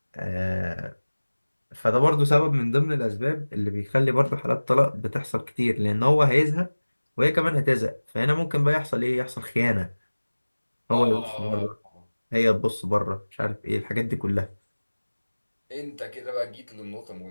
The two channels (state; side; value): inverted; both; correlation -1.00